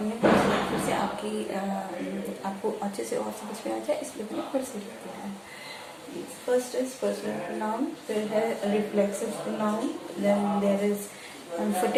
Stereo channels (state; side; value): identical; both; correlation 1.00